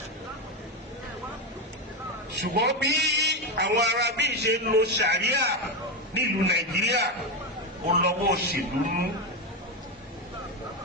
Ṣùgbọ́n bí àwọn Arábí ṣe ń lo Sharia nílùú Nàìjíríà ó lọ́wọ́ òṣèlú nú.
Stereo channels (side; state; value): both; normal; correlation 0.12